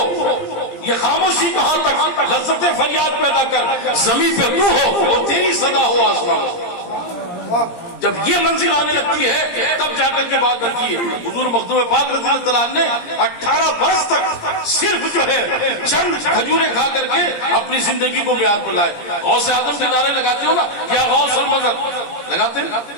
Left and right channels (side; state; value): right; late; 17 ms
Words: یہ خاموشی کہاں تک، لذت فریاد پیدا کر، زمین پہ تو ہو اور تیری صدا ہو آسمان۔ جب یہ منزل آنے لگتی ہے تب جا کر کے بات بنتی ہے۔ حضور مخدوم پاک رضی اللہ عنہ نے 18 برس تک صرف جو ہے چند کھجوریں کھا کر کے اپنی زندگی کو معیار پر لائے۔ غوث اعظم کے نعرے لگاتے ہو نا، یا غوث المدد لگاتے ہیں،